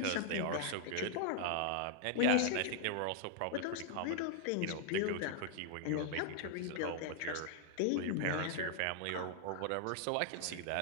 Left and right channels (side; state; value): both; different; correlation 0.00